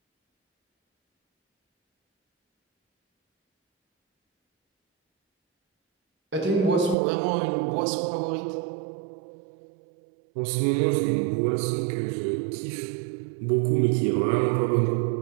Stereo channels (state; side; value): drops out; left; at 7.0 s